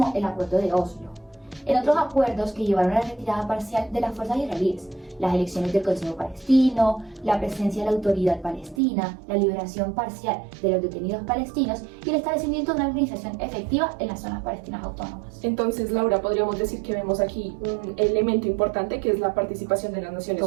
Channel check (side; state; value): left; drops out; at 8.8 s